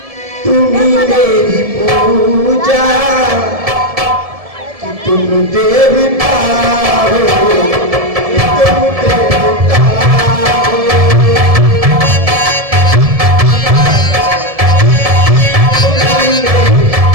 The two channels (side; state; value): left; late; 1.7 ms